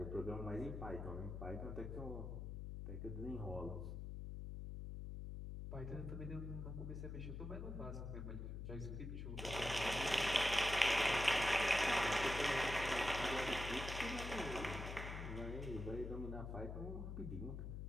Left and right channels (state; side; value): noise; left; hum, 6 dB below the sound